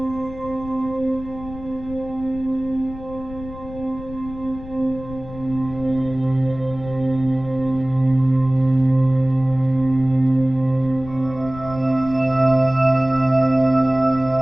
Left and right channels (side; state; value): left; noise; rumble, 15 dB below the sound